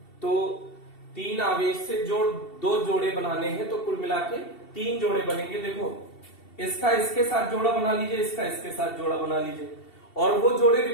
तो 3 आवेश से 2 जोड़े बनाने हैं, तो कुल मिला के 3 जोड़े बनेंगे। देखो इसका इसके साथ जोड़ा बना लीजिए, इसका इसके साथ जोड़ा बना लीजिए, और वो जोड़े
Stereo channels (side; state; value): right; late; 2.7 ms